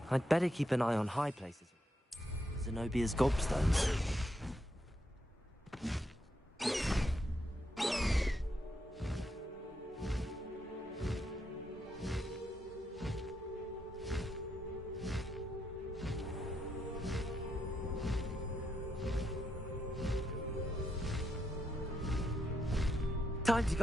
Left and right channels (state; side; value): normal; both; correlation 0.80